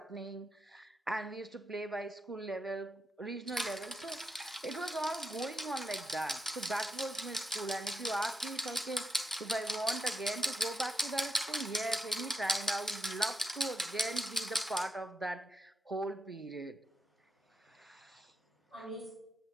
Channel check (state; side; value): normal; both; correlation 0.85